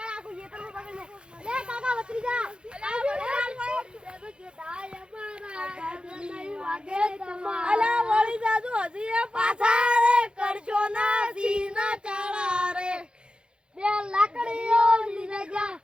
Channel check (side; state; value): left; late; 0.052 ms